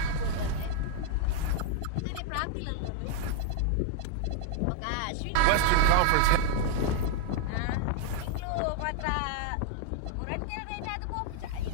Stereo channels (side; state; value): both; different; correlation 0.00